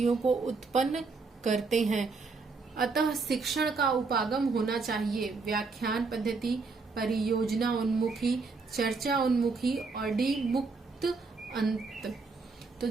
को उत्पन्न करते हैं। अतः शिक्षण का उपागम होना चाहिए व्याख्यान पद्धति, परियोजना उन्मुखी, चर्चा उन्मुखी और डी मुक्त अंत। तो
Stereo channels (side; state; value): left; quieter; 4.2 dB